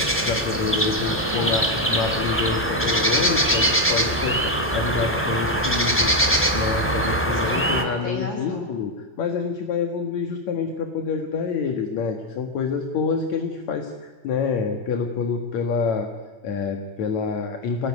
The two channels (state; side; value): normal; both; correlation 0.05